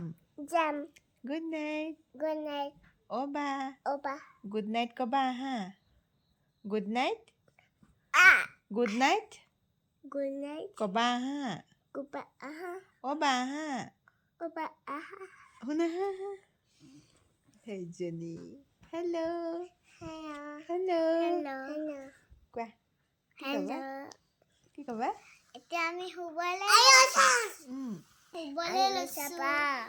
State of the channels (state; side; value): identical; both; correlation 1.00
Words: গুড নাইট অ' বা গুড নাইট ক'বা হা গুড নাইট ক'বা হা অ' বা হা শুনা হা সেইজনী হেল্ল' কোৱা কি ক'বা এতিয়া আমি শুবলৈ লৈছো